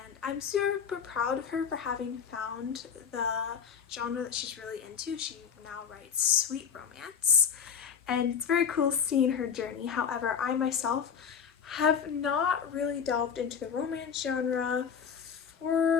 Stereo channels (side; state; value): right; quieter; 7.2 dB